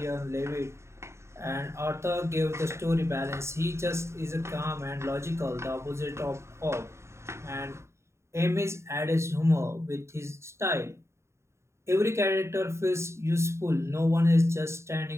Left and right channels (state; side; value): late; left; 0.13 ms